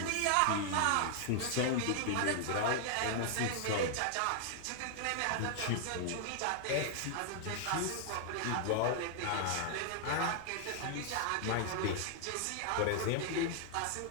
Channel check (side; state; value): both; different; correlation 0.00